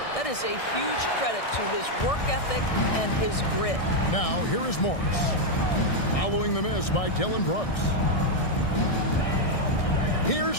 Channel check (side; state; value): right; late; 1.6 ms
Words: That is a huge credit to his work ethic and his grit. Now, here is Morris. Following the miss by Dylan Brooks.